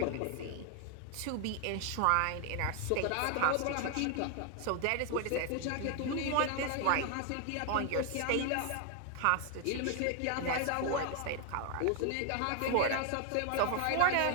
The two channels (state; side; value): different; both; correlation 0.00